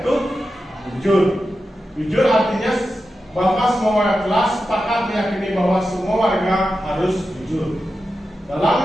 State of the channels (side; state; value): both; normal; correlation 0.91